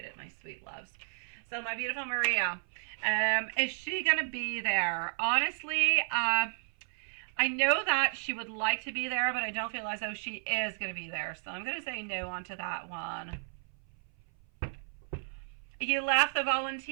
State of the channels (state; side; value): silent; left; 56 dB below the other